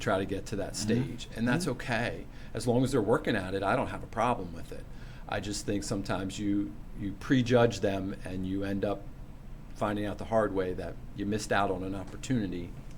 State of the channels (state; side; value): identical; both; correlation 1.00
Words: to get to that stage, and that's okay. As long as they're working at it, I don't have a problem with it. I just think sometimes you prejudge them and you end up finding out the hard way that you missed out on an opportunity.